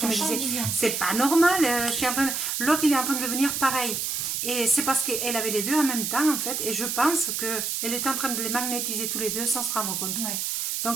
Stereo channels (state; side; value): noise; right; hiss, 1 dB below the sound